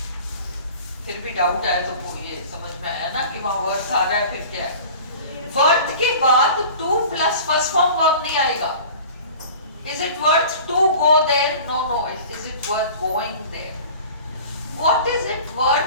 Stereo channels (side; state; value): both; inverted; correlation -0.41